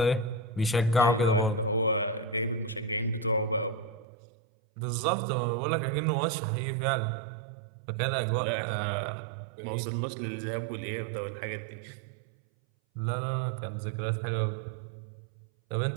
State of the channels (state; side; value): drops out; left; at 4.0 s